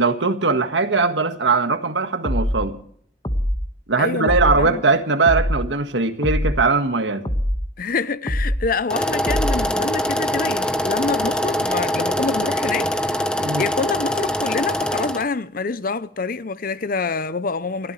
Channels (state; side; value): normal; both; correlation 0.23